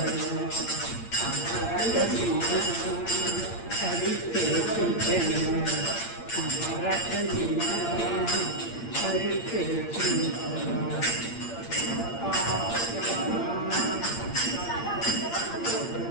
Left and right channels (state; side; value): late; right; 8.7 ms